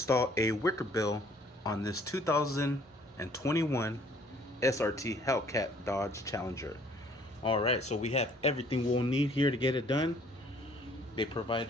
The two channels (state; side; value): normal; both; correlation 0.58